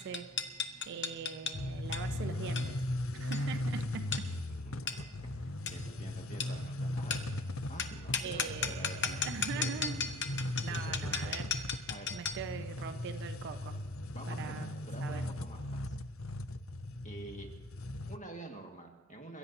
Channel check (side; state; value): both; normal; correlation 0.49